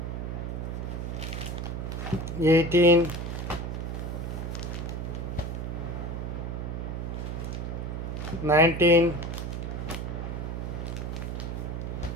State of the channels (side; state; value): right; noise; hum, 4 dB below the sound